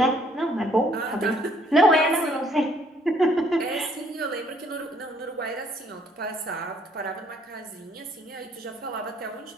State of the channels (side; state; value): both; normal; correlation 0.64